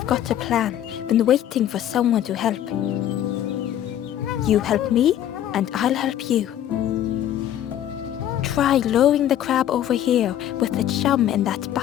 got a plan, been waiting for someone to help. You help me, and I'll help you. Try lowering the crab over here with the chum in that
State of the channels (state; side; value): quieter; right; 11.3 dB